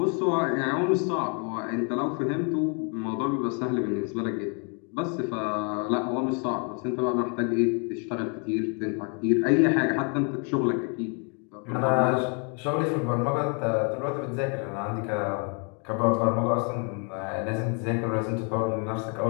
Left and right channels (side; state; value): right; quieter; 38.0 dB